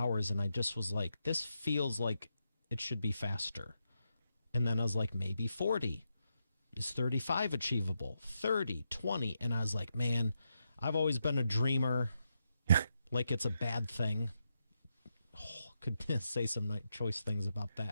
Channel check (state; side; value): inverted; both; correlation -0.84